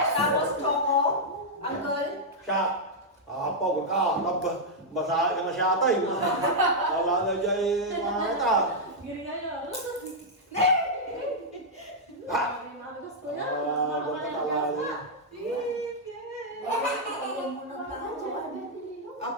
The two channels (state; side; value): normal; both; correlation -0.06